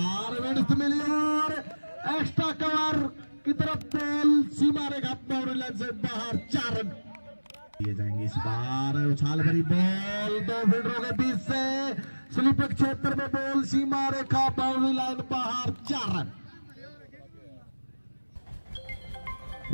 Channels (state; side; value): inverted; both; correlation -1.00